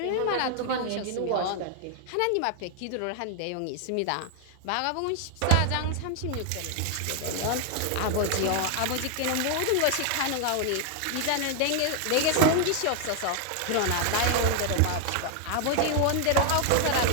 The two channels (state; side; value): different; both; correlation 0.00